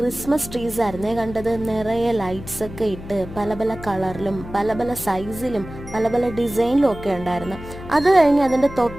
ട്രീസ് ആയിരുന്നേ കണ്ടത്. നിറയെ ലൈറ്റ്സ് ഒക്കെ ഇട്ട് പല പല കളറിലും പല പല സൈസിലും പല പല ഡിസൈനിലും ഒക്കെ ഉണ്ടായിരുന്നു. അത് കഴിഞ്ഞ് അതിൻ്റെ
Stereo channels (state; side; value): noise; left; hum, 13 dB below the sound